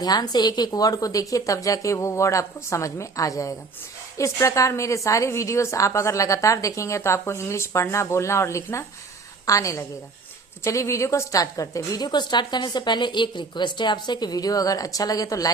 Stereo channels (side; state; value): left; quieter; 4.2 dB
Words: से एक एक वर्ड को देखिए, तब जाके वो वर्ड आपको समझ में आ जाएगा। इस प्रकार मेरे सारे वीडियोस आप अगर लगातार देखेंगे तो आपको इंग्लिश पढ़ना, बोलना और लिखना आने लगेगा। तो चलिए वीडियो को स्टार्ट करते हैं। वीडियो को स्टार्ट करने से पहले एक रिक्वेस्ट है आपसे कि वीडियो अगर अच्छा लगे तो